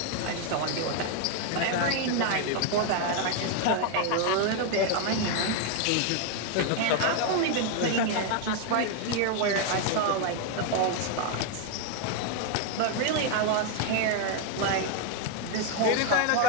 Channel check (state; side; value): different; both; correlation 0.01